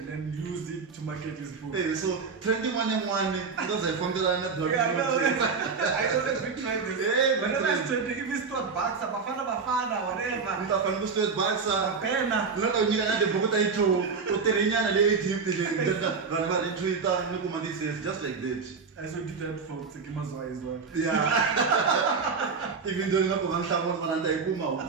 then use it to market his book. Hey, so trending one because I found that yeah, I know that big trend is. Hey, whenever it's trending, if it's not Baksa, Bafana, whatever. Nta fana ku straight Baksa. Pena. Loko nyika na de book ta intro, u terinyana le Egypt le. Vanhu va ri Twitter ni kuma this is just like that. I saw did that for Tsekimazwa as well. Yeah. Even though ngapho ngamhlaba ngona nta ikuma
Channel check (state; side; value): quieter; left; 5.1 dB